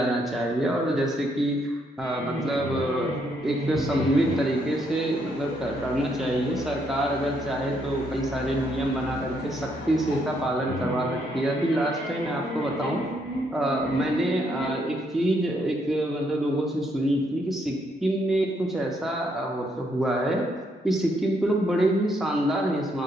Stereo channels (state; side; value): normal; both; correlation 0.74